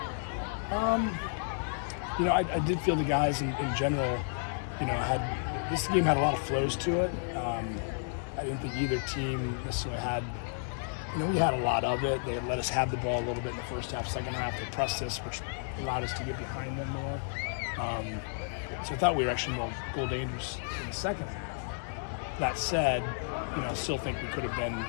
I did feel the guys in general, this game had a lot of flows to it. I didn't think either team necessarily had, we had a lot of it. They let us have the ball a little bit in the first half. Second half, they pressed us, which allowed us to get behind them more. So I thought we were actually more goal dangerous in the second half. That said, I still think we could have been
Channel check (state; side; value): silent; right; 56 dB below the other